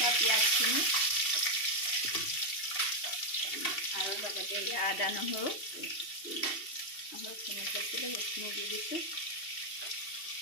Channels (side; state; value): right; late; 2.7 ms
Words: পিঁয়াজখিনি আৰু লগতে আদা নহৰুখিনি থৈছিলোঁ সেইখিনি দি দিছোঁ।